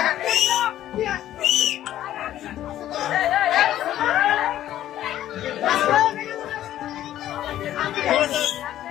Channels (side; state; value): right; quieter; 12.6 dB